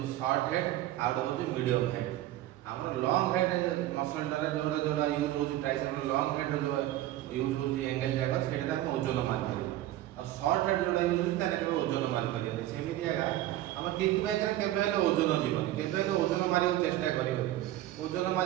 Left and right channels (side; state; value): left; quieter; 14.5 dB